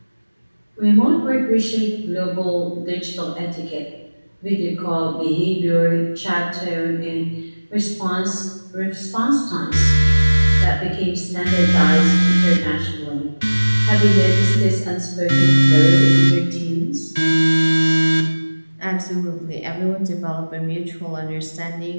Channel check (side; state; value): both; inverted; correlation -1.00